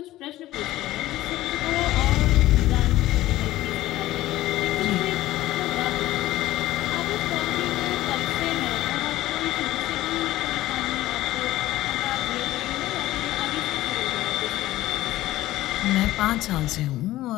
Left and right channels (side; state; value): right; quieter; 15.8 dB